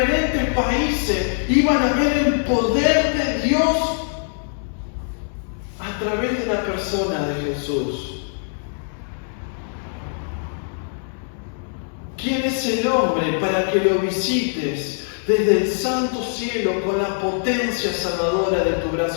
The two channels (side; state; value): right; silent; digital silence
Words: países, iban a ver el poder de Dios a través de la persona de Jesús. ¿Quién es el hombre para que lo visites desde el santo cielo con la potencia salvadora de tu